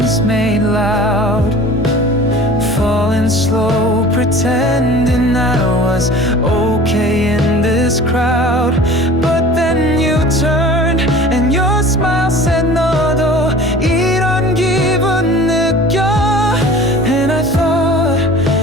was okay in this crowd. But then you turned and your smile said 너도 이런 기분 느껴. And I thought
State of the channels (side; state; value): both; normal; correlation 0.43